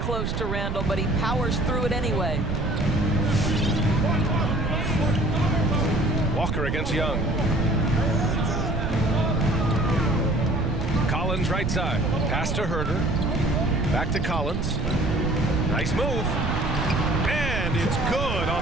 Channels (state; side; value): noise; right; rumble, 2 dB below the sound